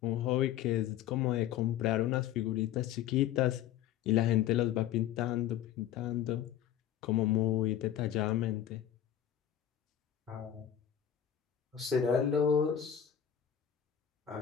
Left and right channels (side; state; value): right; quieter; 10.2 dB